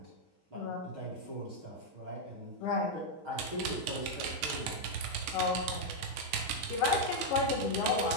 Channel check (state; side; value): late; left; 6.4 ms